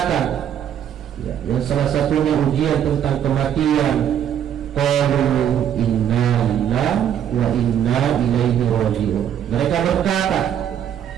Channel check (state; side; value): quieter; left; 9.5 dB